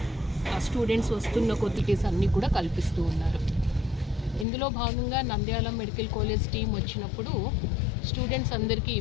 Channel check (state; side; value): drops out; right; at 4.5 s